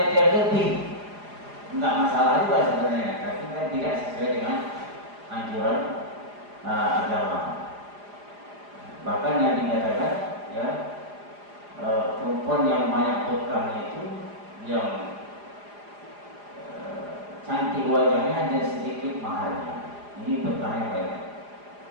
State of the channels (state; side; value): late; left; 4.9 ms